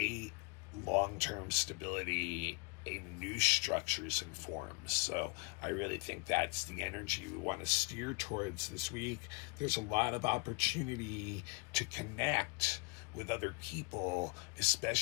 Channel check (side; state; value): right; quieter; 30.0 dB